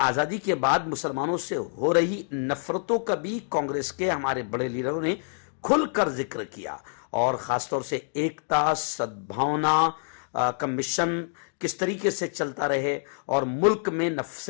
آزادی کے بعد مسلمانوں سے ہو رہی نفرتوں کا بھی کانگریس کے ہمارے بڑے لیڈروں نے کھل کر ذکر کیا، اور خاص طور سے ایکتا، سدبھاونا کا مشن کس طریقے سے چلتا رہے، اور ملک میں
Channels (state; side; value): silent; right; digital silence